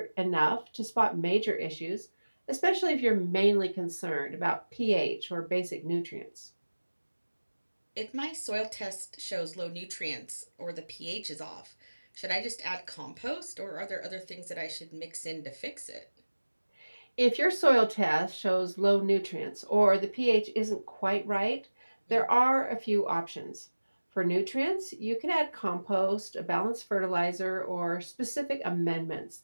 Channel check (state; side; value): inverted; both; correlation -1.00